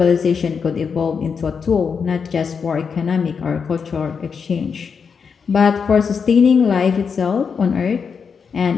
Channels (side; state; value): right; quieter; 6.0 dB